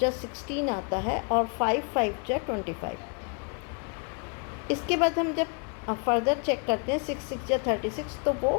16 आता है और 5 5 जा 25। इसके बाद हम जब फर्दर चेक करते हैं 6 6 जा 36, तो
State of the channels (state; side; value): quieter; right; 37.6 dB